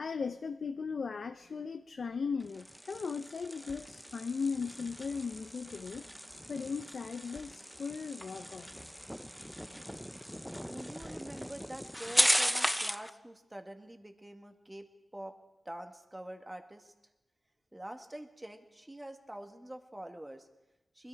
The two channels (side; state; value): both; normal; correlation 0.96